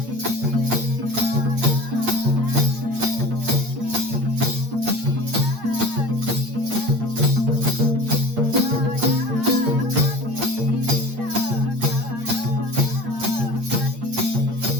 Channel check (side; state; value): left; late; 8.6 ms